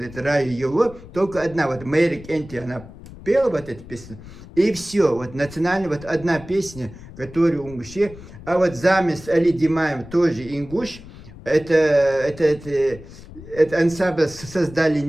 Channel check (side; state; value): left; noise; rumble, 17 dB below the sound